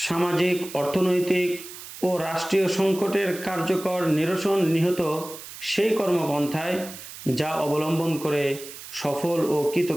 সামাজিক, অর্থনৈতিক ও রাষ্ট্রীয় সংকটের কার্যকর নিরসন নিহত সেই কর্মপন্থায় যা অবলম্বন করে সফল ও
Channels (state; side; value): noise; right; hiss, 14 dB below the sound